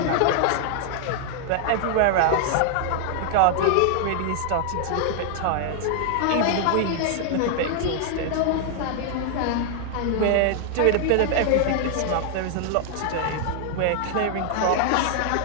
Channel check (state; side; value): different; both; correlation 0.00